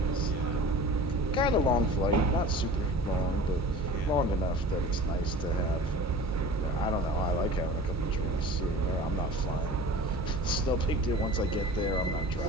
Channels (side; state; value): both; normal; correlation 0.39